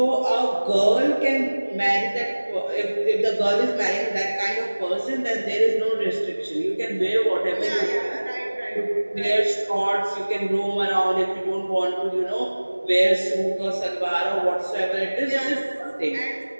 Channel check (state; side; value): inverted; both; correlation -1.00